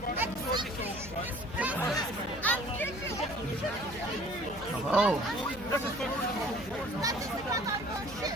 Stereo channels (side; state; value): left; noise; hum, 15 dB below the sound